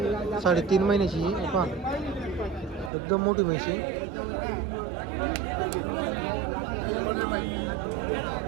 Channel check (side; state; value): left; drops out; at 2.9 s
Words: 3.5 महिन्याची. हे पहा, एकदम मोठी म्हशी.